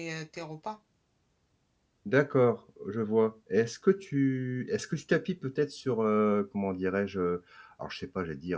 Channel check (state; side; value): identical; both; correlation 1.00